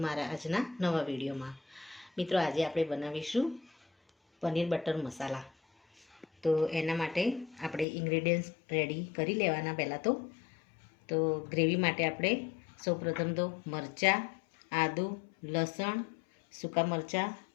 મારા આજના નવા વિડીયોમાં. મિત્રો, આજે આપણે બનાવીશું પનીર બટર મસાલા. તો એના માટે આપણે ઇન્ગ્રેડિયન્ટ્સ રેડી કરી લેવાના. પહેલાં તો ગ્રેવી માટે આપણે સૌપ્રથમ તો મરચાં, આદુ, લસણ, સૂકા મરચાં,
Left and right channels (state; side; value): drops out; right; at 7.9 s